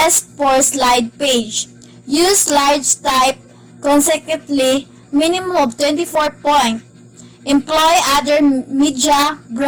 per slide page. Use slides type consecutively, minimum of 24 points. Employ other media,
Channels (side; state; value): both; identical; correlation 1.00